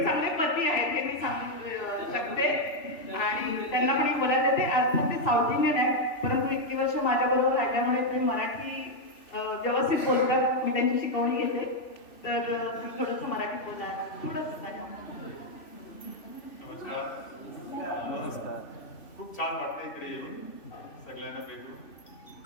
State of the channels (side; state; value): right; late; 3.0 ms